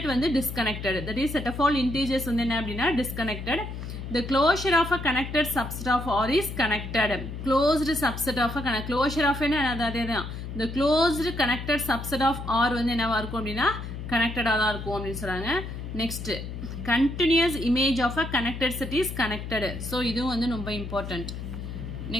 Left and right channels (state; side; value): noise; left; hum, 8 dB below the sound